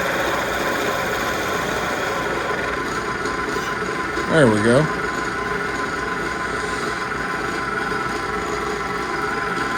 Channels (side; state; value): both; identical; correlation 1.00